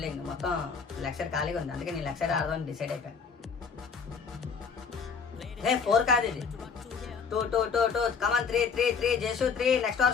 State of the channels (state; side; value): quieter; right; 5.7 dB